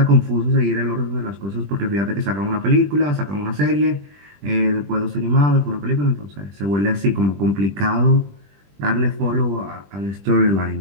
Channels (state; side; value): late; left; 20 ms